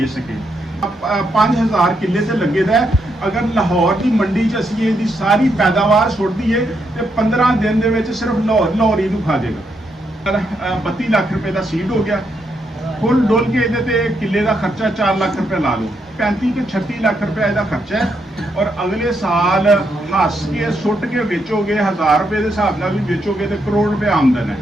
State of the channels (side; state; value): both; normal; correlation 0.79